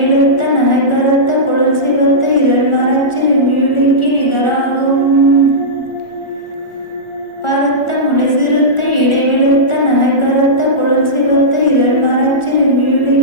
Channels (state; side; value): late; right; 1.4 ms